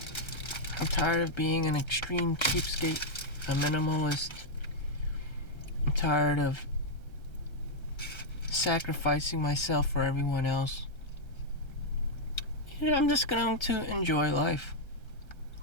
I'm tired of being an extreme cheapskate, a minimalist. I'm tired of sacrificing myself for everyone else. I'm just going to enjoy life.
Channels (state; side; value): late; right; 1.3 ms